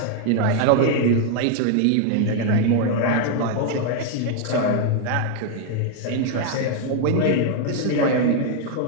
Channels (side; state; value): both; different; correlation 0.00